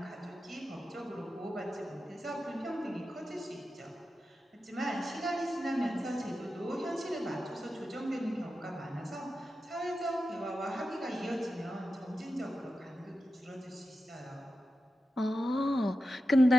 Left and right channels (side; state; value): both; normal; correlation 0.91